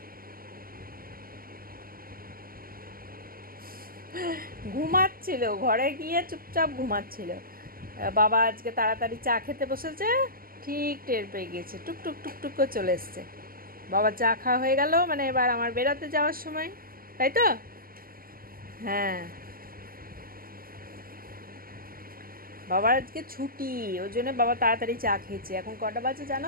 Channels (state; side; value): late; left; 0.42 ms